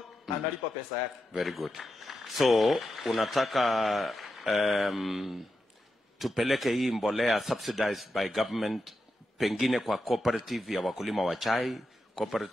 analipa pesa yake. Very good. So unataka tupeleke hii mbolea subsidized by government pengine kwa cooperative ya wakulima wa chai,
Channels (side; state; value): both; normal; correlation 0.88